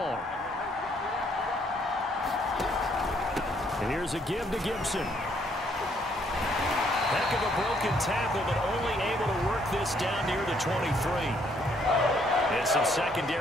And here's a give to Gibson. Heck of a broken tackle, but only able to work this down near the 23. And some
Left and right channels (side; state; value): both; normal; correlation 0.68